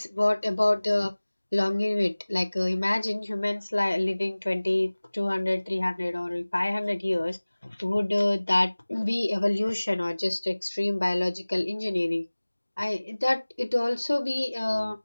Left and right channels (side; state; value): both; inverted; correlation -1.00